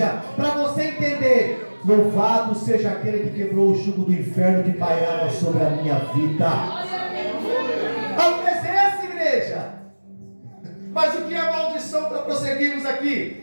Para você entender, louvado seja aquele que quebrou o jugo do inferno que pairava sobre a minha vida. A presença, igreja. Mas o que é maldição para prosseguirmos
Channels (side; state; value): both; inverted; correlation -1.00